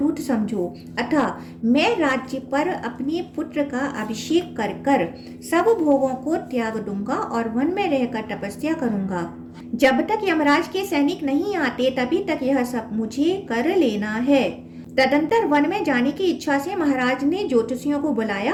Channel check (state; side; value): identical; both; correlation 1.00